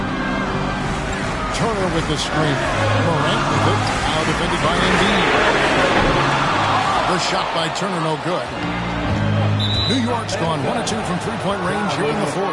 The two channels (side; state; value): both; identical; correlation 1.00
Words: Turner with the screen. Morant with it. Now defended by Embiid. The shot by Turner no good. New York's gone 1 of 2 from three-point range here in the